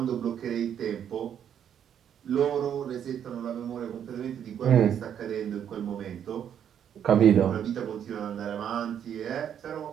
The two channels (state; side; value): quieter; left; 9.1 dB